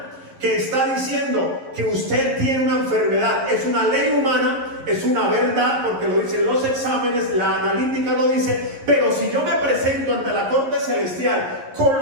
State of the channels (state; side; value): late; left; 11 ms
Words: que está diciendo que usted tiene una enfermedad. Es una ley humana, es una verdad, porque lo dicen los exámenes, la analítica lo dice. Pero si yo me presento ante la corte celestial con